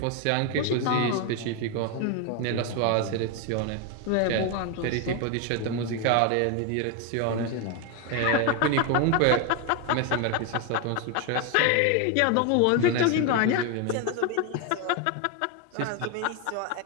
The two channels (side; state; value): both; different; correlation 0.01